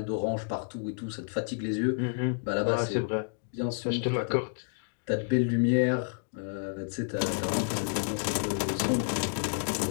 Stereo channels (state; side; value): silent; right; digital silence